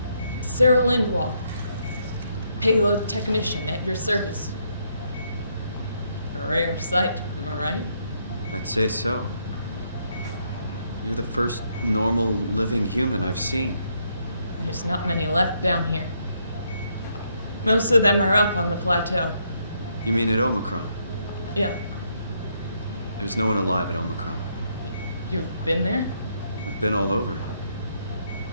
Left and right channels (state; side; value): inverted; both; correlation -0.74